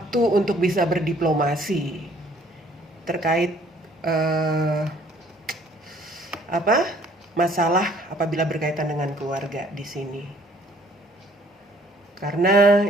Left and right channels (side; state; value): both; normal; correlation 0.60